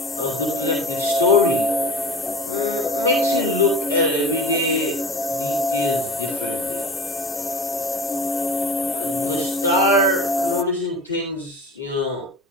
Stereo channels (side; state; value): both; normal; correlation 0.35